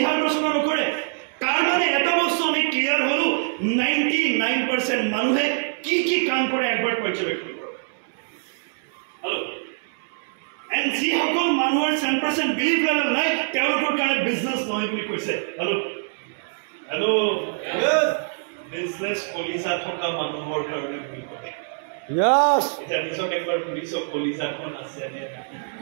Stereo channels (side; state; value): left; silent; 62 dB below the other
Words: ৰচনা নকৰে তাৰ মানে এটা বস্তু আমি ক্লিয়াৰ হলো 99% মানুহে কি কি কাম কৰে একবাৰ পৰ্যবেক্ষণ কৰক হেল্ল এণ্ড যিসকল মানুহৰ 10% বিলিভ লেভেল নাই তেওঁলোকৰ কাৰণে বিজনেছ নহয় বুলি কৈছে হেল্ল হেল্ল বিজনেছ কলিজা থকা মানুহৰ কাৰণে বুলি কয় Yes. এটা নিজক একবাৰ পুলিচৰ কলিজাখন আছে নে